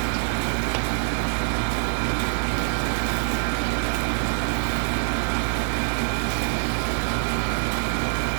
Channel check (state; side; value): silent; left; 55 dB below the other